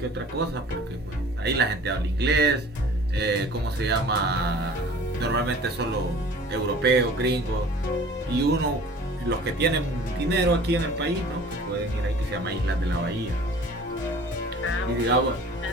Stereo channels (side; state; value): both; normal; correlation 0.46